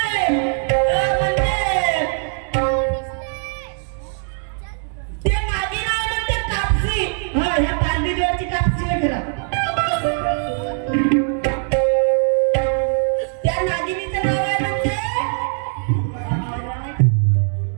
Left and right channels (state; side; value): silent; left; 59 dB below the other